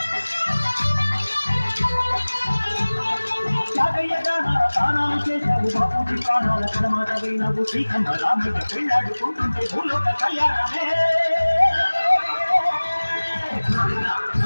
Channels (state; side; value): inverted; both; correlation -1.00